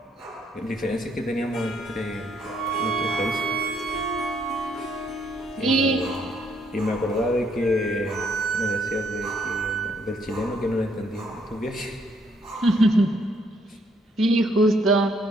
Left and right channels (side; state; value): both; normal; correlation 0.69